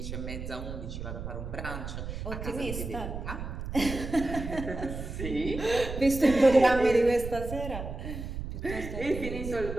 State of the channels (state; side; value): noise; right; rumble, 7 dB below the sound